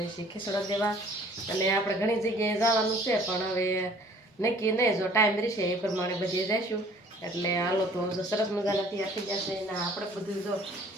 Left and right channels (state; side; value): normal; both; correlation 0.54